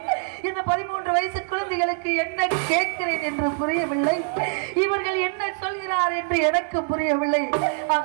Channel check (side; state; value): left; silent; 62 dB below the other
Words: இந்த 13 வயசு குழந்தைகளுக்கு என்ன கேட்கிறேன் என்று புரியவில்லை. இவர்கள் என்ன சொல்கிறார் என்று எனக்கு புரியவில்லை.